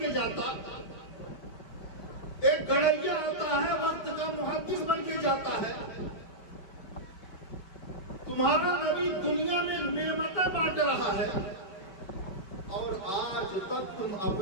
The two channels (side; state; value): right; late; 5.1 ms